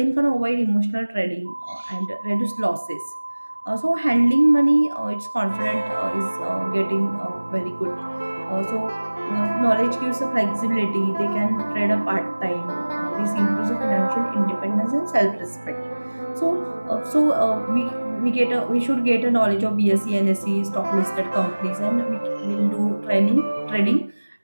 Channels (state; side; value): inverted; both; correlation -1.00